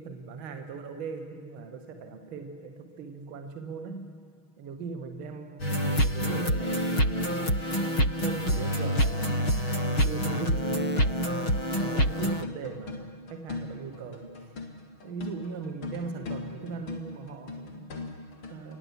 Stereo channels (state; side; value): late; right; 6.3 ms